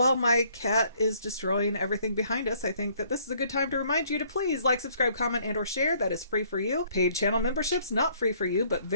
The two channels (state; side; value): inverted; both; correlation -0.63